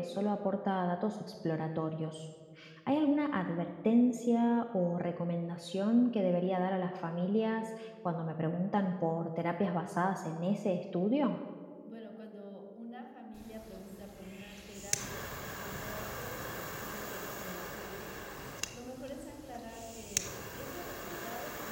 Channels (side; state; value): both; identical; correlation 1.00